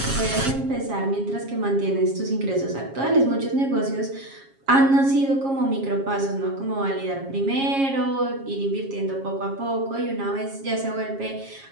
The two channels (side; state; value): left; late; 7.4 ms